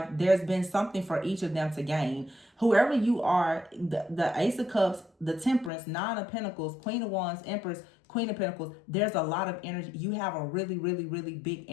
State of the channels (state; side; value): drops out; right; at 5.7 s